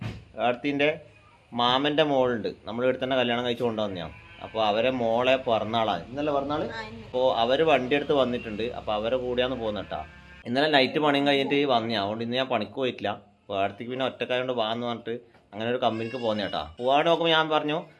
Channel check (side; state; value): both; identical; correlation 1.00